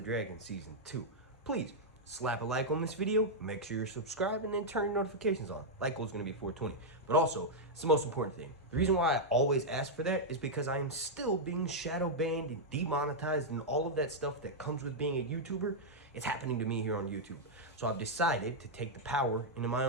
Dragon Season 2. Please, slap a like on this video, make sure you're subscribed, and then turn your notifications on. Like goal is going to be 420. But also, it's the most important thing. The reason why I always ask for that is because I am still being shadow banned and demonetized and all of that stuff that comes with being a YouTuber. It's happening to me here on YouTube. So I've decided to take the power into my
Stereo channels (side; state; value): both; normal; correlation -0.04